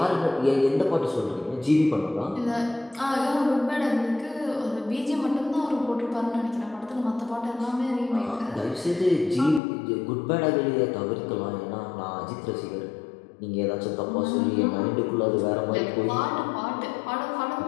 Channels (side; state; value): right; drops out; at 9.6 s